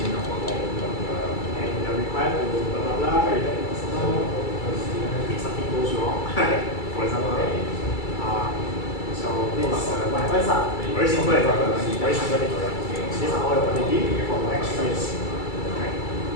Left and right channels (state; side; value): late; right; 2.3 ms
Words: you're required to blah blah blah, you get the customer if something goes wrong, for example. So this what happens are very simple example, very simple thing. These are all your quantity for the next years. Right?